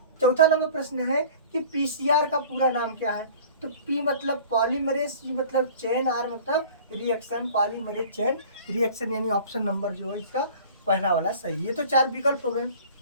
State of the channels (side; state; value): both; inverted; correlation -0.45